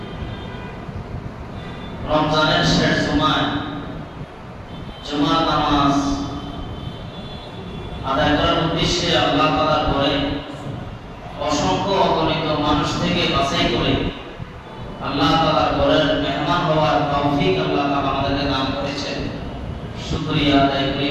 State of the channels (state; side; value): identical; both; correlation 1.00